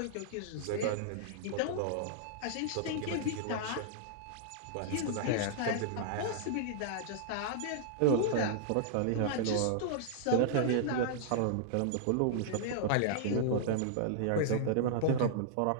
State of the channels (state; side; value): different; both; correlation -0.02